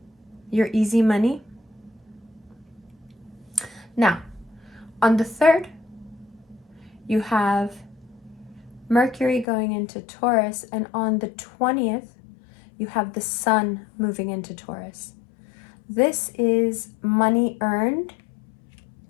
your easy money. Now, on the 3rd, you have Mercury going into Taurus, and on the 20th, you have the Sun moving into Taurus. This is money earned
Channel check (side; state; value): right; drops out; at 9.5 s